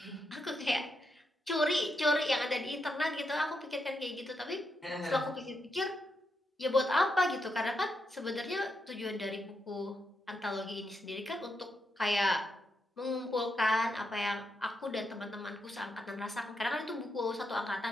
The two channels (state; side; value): normal; both; correlation 0.82